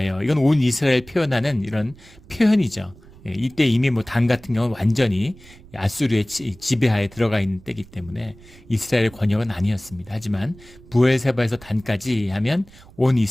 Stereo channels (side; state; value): right; noise; rumble, 23 dB below the sound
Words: 이건 온 이스라엘 표현하는 이런 표현이죠. 이때 이미 뭐 단 같은 경우는 완전히 아수르의 지배하에 들어가 있는 때이기 때문에 이스라엘의 권역은 아니었습니다. 하지만 부엘세바에서 단까지 하면 온